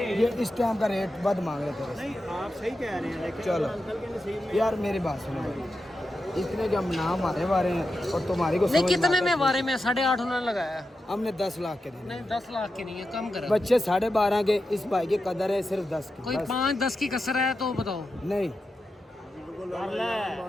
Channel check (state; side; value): normal; both; correlation 0.89